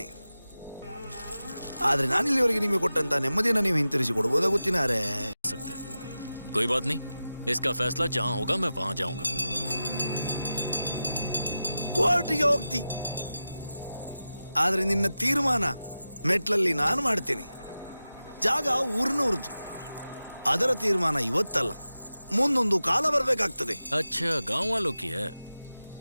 ಆದ್ರೆ ನಾನಿಲ್ಲಿವರೆಗೆ ನಿಮಗೆ ಕೊಟ್ಟಂತ ನೆಮ್ಮದಿಯನ್ನು ನೀವು ಹಿಂತಿರಿಸಿ ಕೊಡ್ಬೋದಾ ಗೊತ್ತಿನಾರೆ? कोई बात नहीं, इसका फैसला जहां होगा मैं वहां जाऊंगा। ಕೋರ್ಟಿಗೆ ಹೋಗ್ತಿ, ಆದ್ರೆ ನಿನ್ನ ತೀರ್ಮಾನ ಮೆಟ್ಲಲ್ಲಿ ನಾನು ಮಾಡ್ತೇನೆ. ಜಾಗ ಊರಿನವ್ರದ್ದು, ಅದರ ತೀರ್ಮಾನ ಇವತ್ತಲ್ಲ, ಮುಂದೊಂದು ಕಾಲ ಬರಬೇಕಾಗ್ತದೆ. अच्छा, गांव वालों की है।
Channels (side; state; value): both; inverted; correlation -0.93